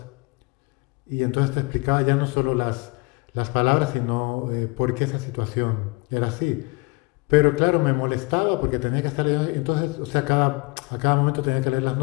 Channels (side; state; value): right; quieter; 27.0 dB